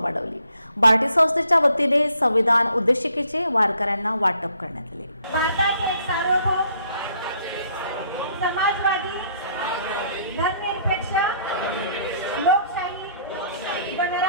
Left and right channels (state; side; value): inverted; both; correlation -0.65